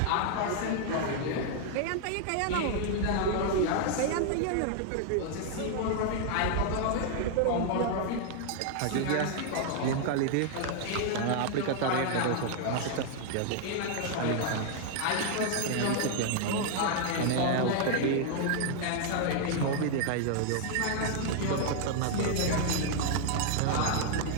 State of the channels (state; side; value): different; both; correlation 0.00